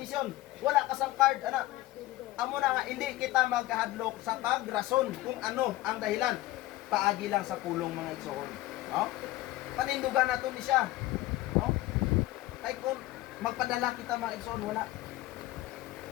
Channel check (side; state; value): right; quieter; 16.8 dB